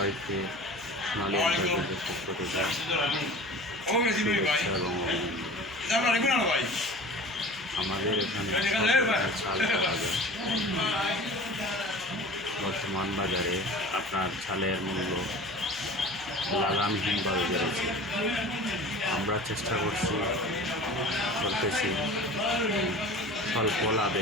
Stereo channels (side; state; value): right; noise; hum, 23 dB below the sound